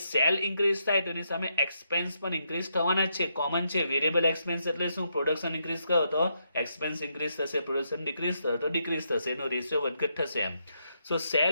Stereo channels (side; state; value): both; inverted; correlation -0.79